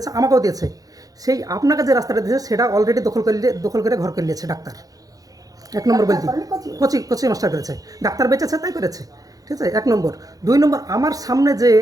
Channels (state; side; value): late; left; 0.17 ms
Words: আমাকেও দিয়েছে, সেই আপনাকে যে রাস্তাটা দিয়েছে সেটা অলরেডি দখল করে ঘর করে নিয়েছে ডাক্তার। 1 নম্বর বলছি, কোচি মাস্টার করেছে, ডাক্তার বেঁচেছে তাই করেছে, ঠিক আছে? 1 নম্বর। 2 নম্বর, আমার সামনে যে